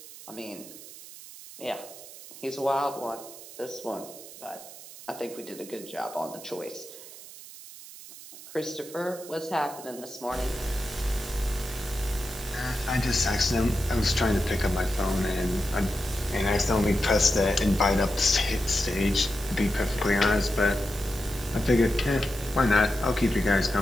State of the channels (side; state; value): right; noise; hiss, 16 dB below the sound